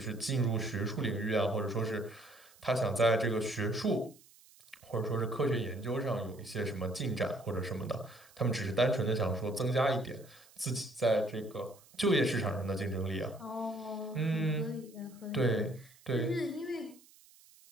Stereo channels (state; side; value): noise; right; hiss, 26 dB below the sound